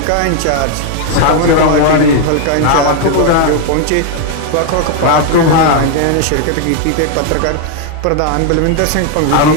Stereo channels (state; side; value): different; both; correlation 0.00